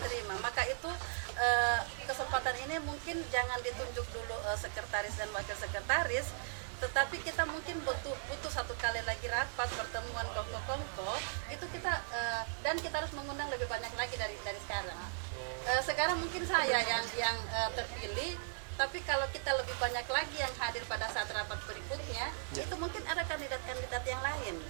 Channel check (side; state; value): left; silent; 53 dB below the other